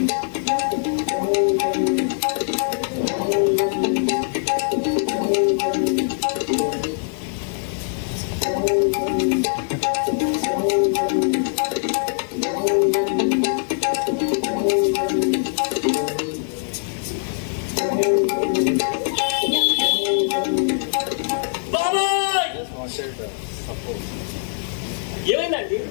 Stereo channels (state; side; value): silent; right; digital silence